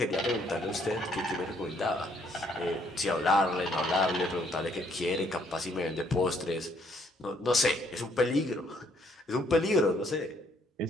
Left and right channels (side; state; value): both; normal; correlation 0.68